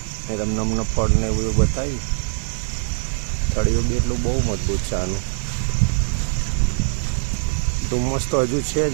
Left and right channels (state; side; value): silent; left; 64 dB below the other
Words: એ તમને ફળ ને એવું બધું બતાવ્યું. થળિયું બી એટલું બહુ મજબૂત છે આનું. ધુમ્મસ તો હજુ છે